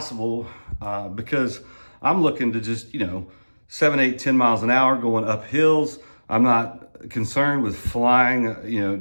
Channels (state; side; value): inverted; both; correlation -1.00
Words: because I'm looking to just, you know, 7, 8, 10 miles an hour going up hills. I'm not concerned with flying, you know,